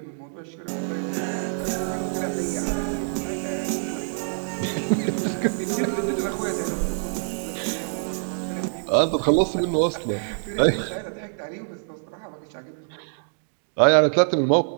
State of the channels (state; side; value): silent; left; 62 dB below the other